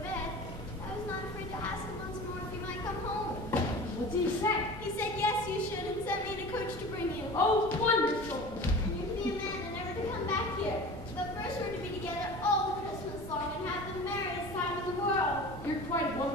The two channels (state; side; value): normal; both; correlation 0.37